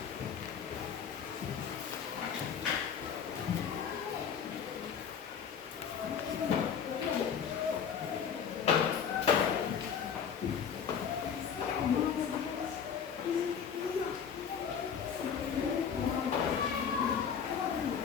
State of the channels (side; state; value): right; quieter; 7.4 dB